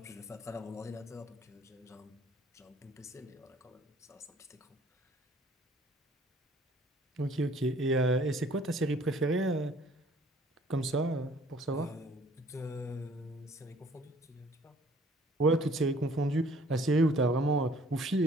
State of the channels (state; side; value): normal; both; correlation 0.57